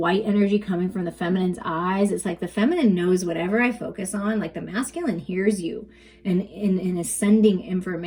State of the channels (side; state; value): both; identical; correlation 1.00